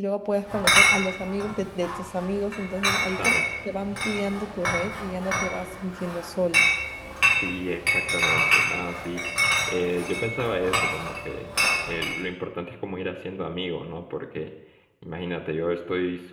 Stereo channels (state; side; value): identical; both; correlation 1.00